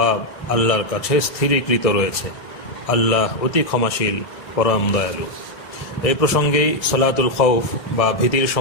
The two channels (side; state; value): right; late; 1.6 ms